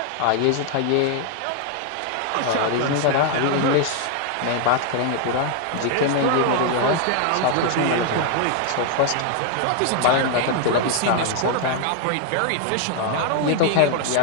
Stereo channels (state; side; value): different; both; correlation 0.00